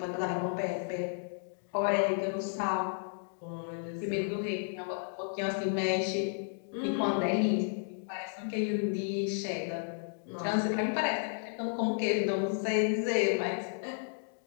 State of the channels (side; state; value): right; silent; digital silence